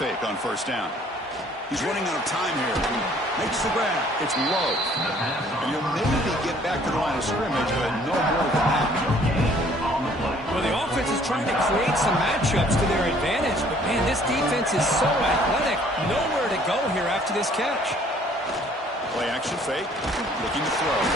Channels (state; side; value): normal; both; correlation 0.58